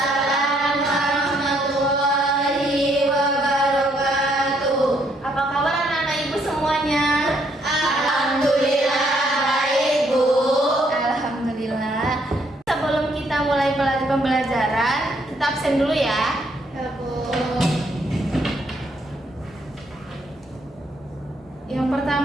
warahmatullahi wabarakatuh. Apa kabar anak-anak ibu semuanya? Alhamdulillah baik, Bu. Alhamdulillah. Sebelum kita mulai pembelajaran, kita absen dulu ya. Ya, Bu. Yang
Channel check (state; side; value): normal; both; correlation 0.70